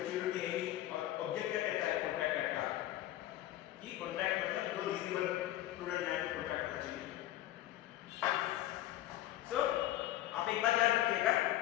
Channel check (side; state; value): right; quieter; 14.4 dB